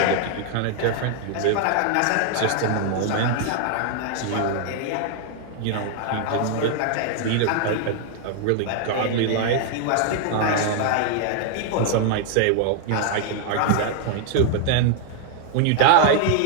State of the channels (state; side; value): different; both; correlation 0.00